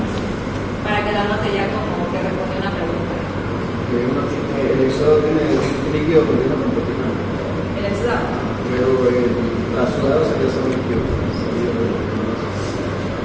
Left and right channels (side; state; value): both; identical; correlation 1.00